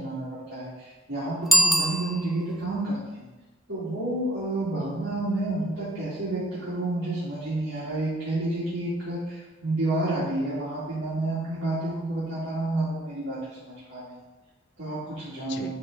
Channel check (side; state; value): both; normal; correlation 0.67